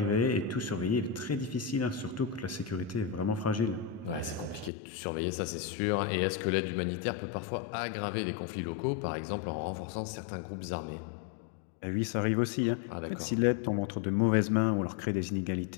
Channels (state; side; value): drops out; right; at 4.7 s